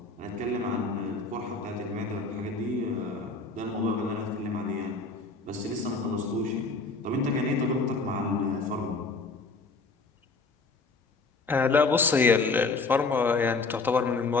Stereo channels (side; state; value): right; quieter; 3.9 dB